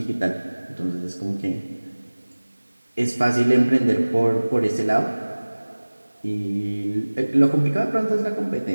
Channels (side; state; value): both; inverted; correlation -1.00